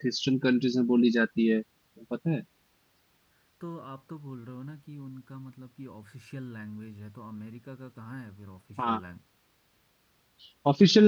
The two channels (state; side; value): identical; both; correlation 1.00